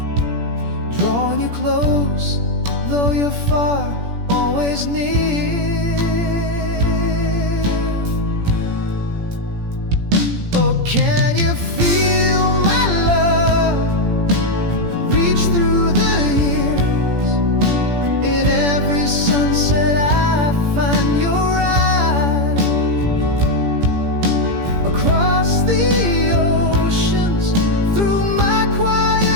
drawing you close, though you're far, always near. Oh, can you feel my love reach through the years? In every sunset I find your eyes. Across the oceans, through my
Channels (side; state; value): left; late; 17 ms